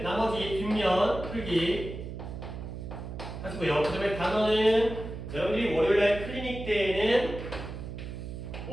나머지 뒷면 풀기 하시고요. 그 다음에 단어는 여러분들이 월요일날 클리닉 때에는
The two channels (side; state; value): right; noise; hum, 8 dB below the sound